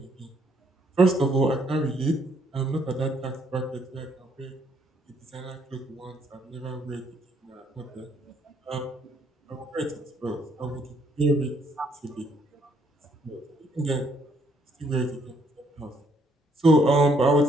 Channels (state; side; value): normal; both; correlation 0.69